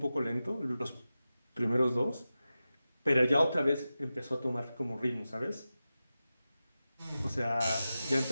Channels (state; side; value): inverted; both; correlation -0.93